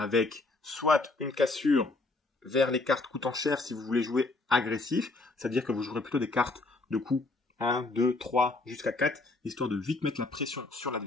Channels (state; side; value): quieter; right; 3.3 dB